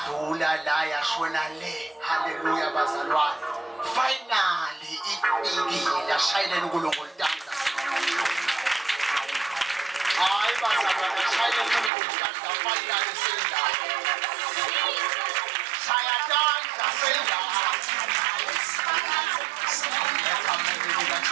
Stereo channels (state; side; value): drops out; left; at 11.9 s